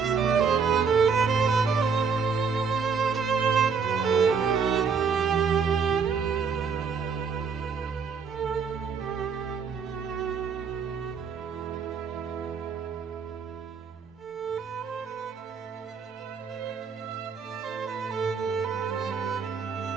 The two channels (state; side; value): quieter; left; 5.7 dB